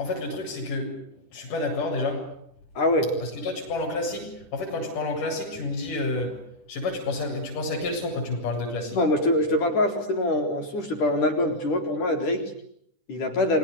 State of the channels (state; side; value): late; right; 10 ms